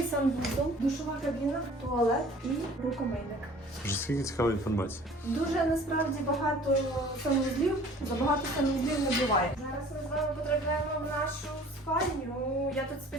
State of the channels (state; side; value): normal; both; correlation 0.49